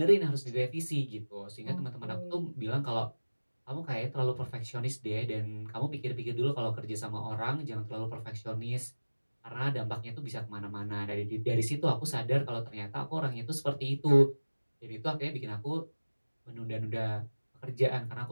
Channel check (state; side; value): inverted; both; correlation -1.00